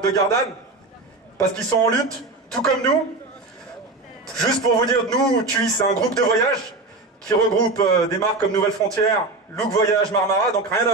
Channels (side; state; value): left; quieter; 3.1 dB